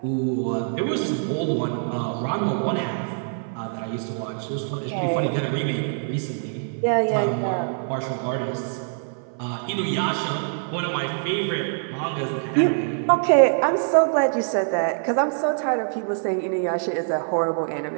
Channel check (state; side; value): silent; left; 56 dB below the other